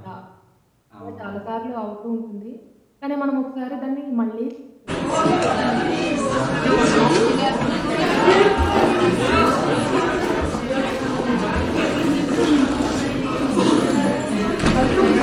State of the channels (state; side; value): identical; both; correlation 1.00